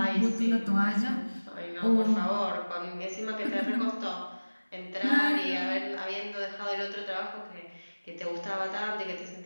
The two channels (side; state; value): both; inverted; correlation -1.00